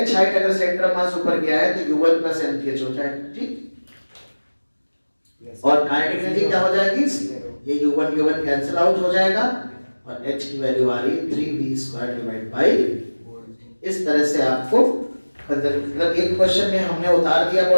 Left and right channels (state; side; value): inverted; both; correlation -1.00